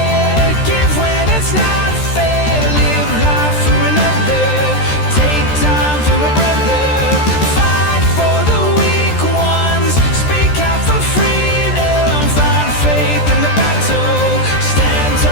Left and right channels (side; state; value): right; late; 13 ms